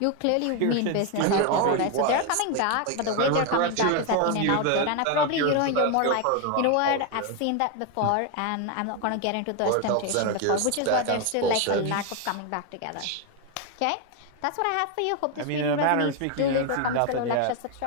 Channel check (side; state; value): both; different; correlation 0.01